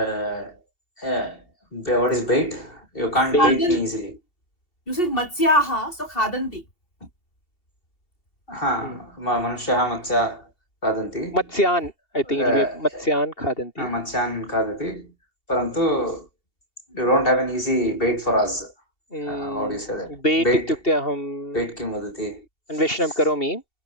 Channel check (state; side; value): late; right; 2.8 ms